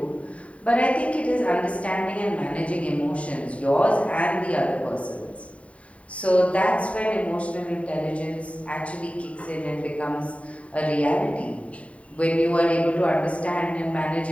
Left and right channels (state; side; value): late; right; 0.065 ms